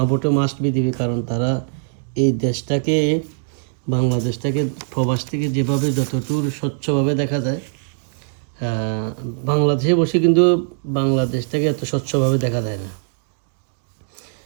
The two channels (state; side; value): silent; left; digital silence